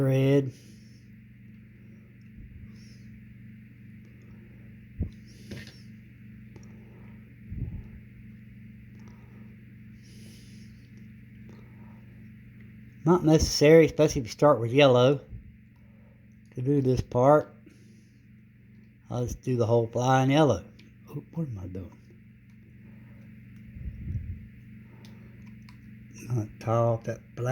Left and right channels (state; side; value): identical; both; correlation 1.00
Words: Not necessary, especially if you start with yellow, to do this part. I'll just do the whole fly in yellow. Oh, what am I doing? I'll tie off that